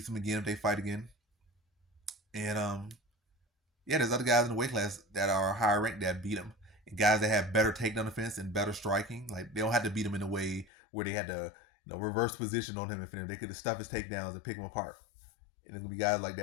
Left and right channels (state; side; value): drops out; right; at 10.7 s